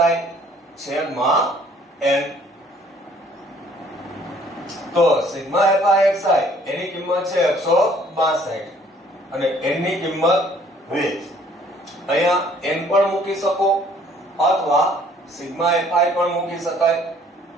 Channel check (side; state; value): both; normal; correlation 0.59